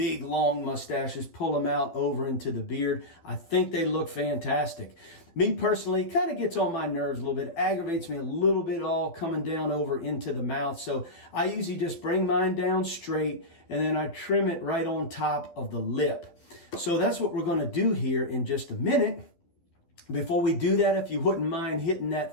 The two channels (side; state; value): right; late; 12 ms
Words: long mustaches, pull them out over into the beard. I think they look fantastic. Me personally, it kind of gets on my nerves a little bit, aggravates me a little bit all coming down over into the mouth. So I usually just bring mine down straight and then I trim it right on top of the lip. So that's what we're going to do here in just a minute. Before we do that, if you wouldn't mind hitting